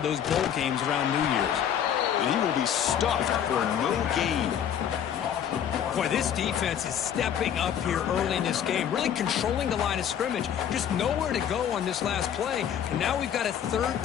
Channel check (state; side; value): quieter; right; 9.2 dB